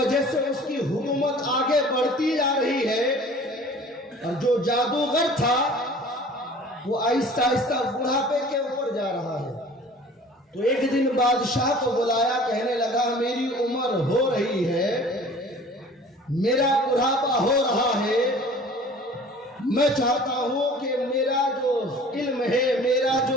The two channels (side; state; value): both; normal; correlation 0.46